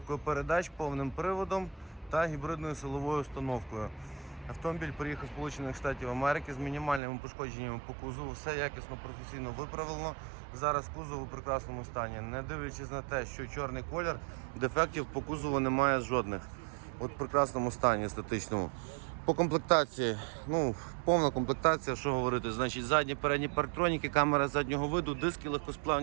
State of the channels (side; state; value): left; drops out; at 7.0 s